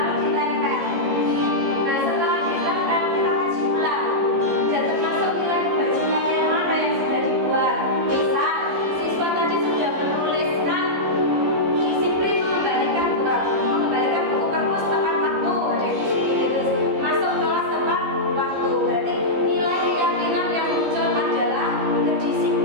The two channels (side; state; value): left; late; 15 ms